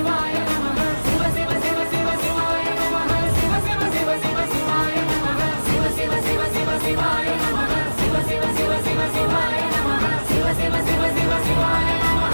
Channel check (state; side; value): inverted; both; correlation -1.00